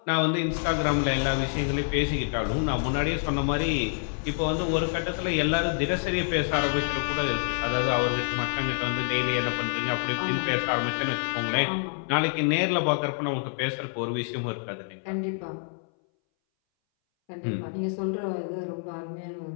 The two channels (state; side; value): silent; right; 60 dB below the other